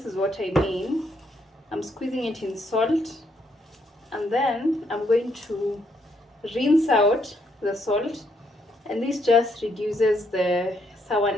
is what I mean. I'm squeezing it in salt, and then I'm going to rinse out the salt, and this just reduces the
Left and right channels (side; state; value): both; normal; correlation 0.73